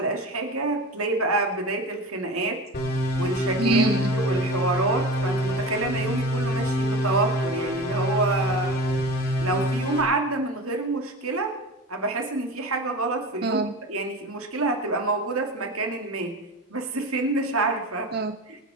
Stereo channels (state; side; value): normal; both; correlation 0.31